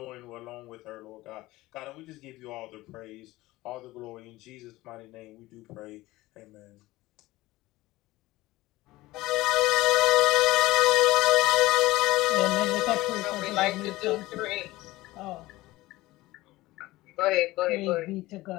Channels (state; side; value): quieter; right; 18.6 dB